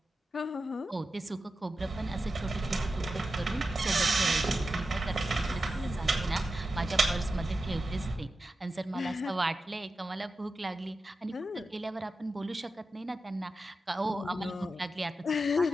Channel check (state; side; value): normal; both; correlation 0.91